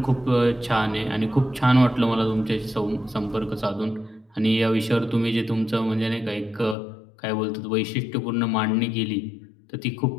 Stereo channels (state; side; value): drops out; right; at 6.8 s